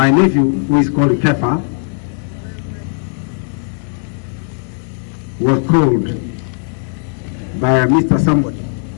nephew, who is called Kefa, was called by Mr. Somebody,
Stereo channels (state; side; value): silent; right; digital silence